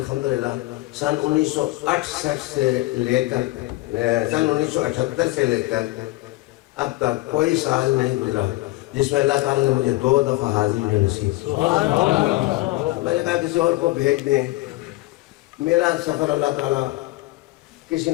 سن 1968 سے لے کر سن 1978 سے لے کر اب تک کوئی سال نہیں گزرا جس میں اللہ تعالیٰ نے مجھے 2 دفعہ حاضری نصیب کی. میں نے کہا کسی اور کو بھیج دیں، میرا سفر اللہ تعالیٰ کسی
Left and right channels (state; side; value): quieter; right; 19.6 dB